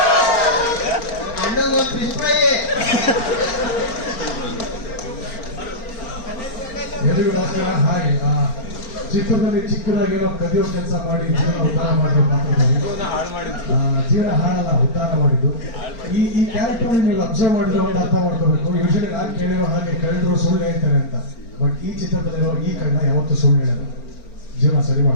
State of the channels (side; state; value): right; late; 4.4 ms